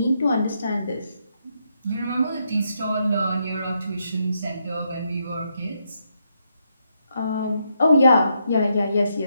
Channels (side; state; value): both; inverted; correlation -0.79